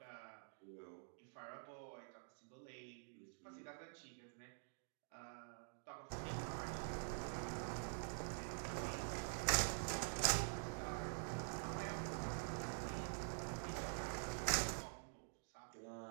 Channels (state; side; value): silent; left; digital silence